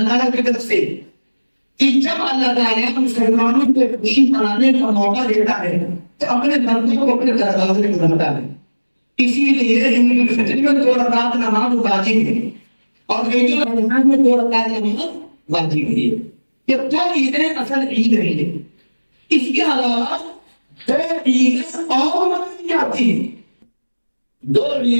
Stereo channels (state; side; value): inverted; both; correlation -1.00